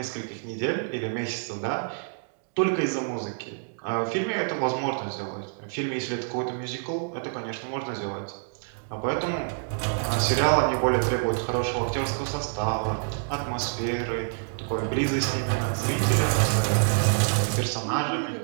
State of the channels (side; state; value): left; silent; digital silence